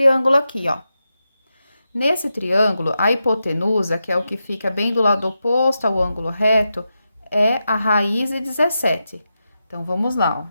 aqui, ó. Nesse triângulo, a hipotenusa, que é o que fica bem do lado oposto ao ângulo reto, é a raiz de 17. Então, vamos lá,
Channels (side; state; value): both; inverted; correlation -0.89